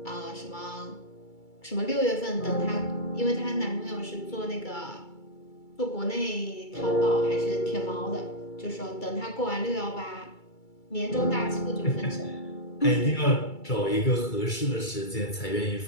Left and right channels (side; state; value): right; late; 2.3 ms